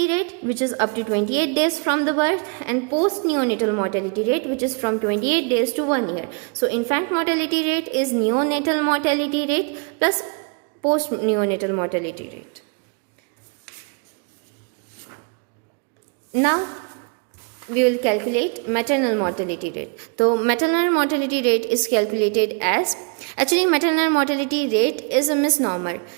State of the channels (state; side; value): quieter; left; 38.0 dB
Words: rate, which is up to 28 days from the birth, and post neonatal mortality rate, which is from 28 days to 1 year. So infant mortality rate is neonatal mortality rate plus post neonatal mortality rate. Now we will calculate maternal mortality rate. So maternal mortality rate is calculated as, actually maternal mortality rate is a misnomer.